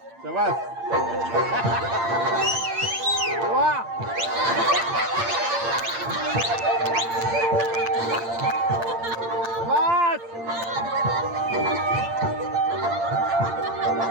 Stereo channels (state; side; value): late; left; 8.7 ms